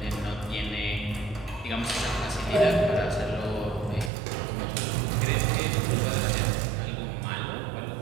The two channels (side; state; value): left; drops out; at 4.1 s